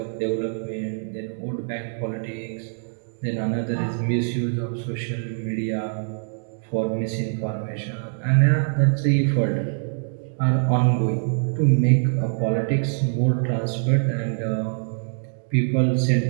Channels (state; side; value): silent; left; digital silence